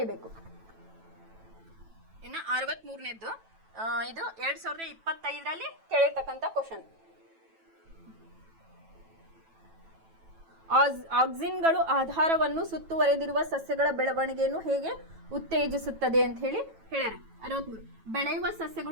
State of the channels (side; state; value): left; late; 9.1 ms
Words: ಇನ್ನು 63ನೇದ್ದು ಇದು 2025ರಲ್ಲಿ ಕೇಳಿರ್ತಕ್ಕಂಥ ಕ್ವಶನ್. ಆಕ್ಸಿನ್ಗಳು ಆಧಾರವನ್ನು ಸುತ್ತುವರೆದಿರುವ ಸಸ್ಯಗಳ ಬೆಳವಣಿಗೆಯನ್ನು ಹೇಗೆ ಉತ್ತೇಜಿಸುತ್ತದೆ ಅಂತ ಹೇಳಿ ಹೇಳ್ಯಾರ. 63 ಬೆಳೆಯುವ